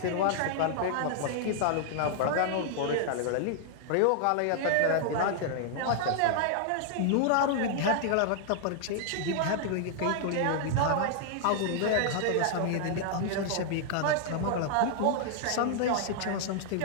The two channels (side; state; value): both; different; correlation -0.01